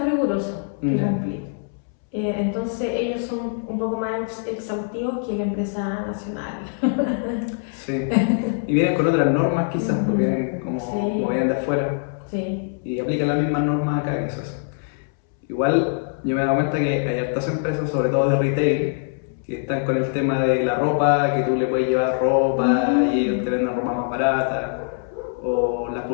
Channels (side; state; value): right; silent; 63 dB below the other